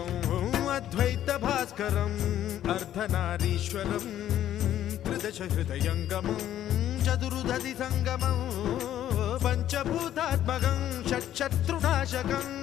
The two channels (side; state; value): right; quieter; 11.6 dB